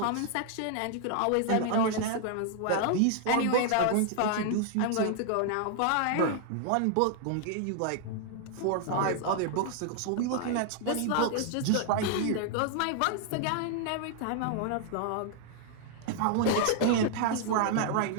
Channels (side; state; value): both; different; correlation 0.00